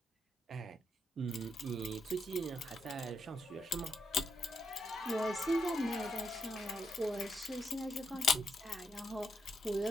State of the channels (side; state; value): both; normal; correlation 0.80